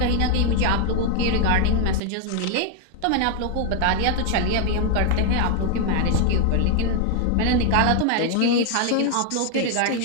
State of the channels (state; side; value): different; both; correlation 0.00